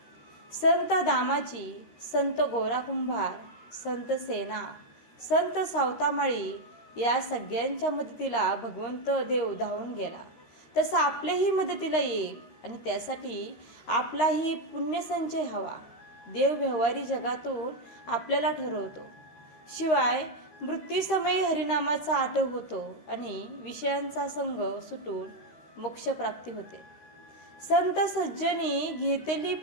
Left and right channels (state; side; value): late; right; 13 ms